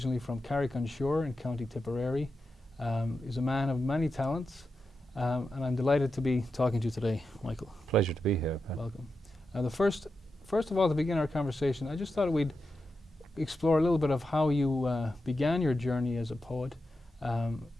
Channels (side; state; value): both; normal; correlation 0.89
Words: from Carrick-on-Shore in County Tipperary. He's a man of many talents, and I'm delighted to be talking to you today, Michael. Pleasure to be here, Pat. Welcome. First of all, to begin our conversation, I just thought we'd explore a little bit of how you began your journey as a poet, and